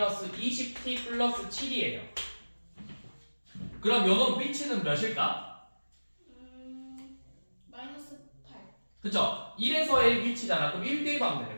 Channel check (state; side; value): inverted; both; correlation -1.00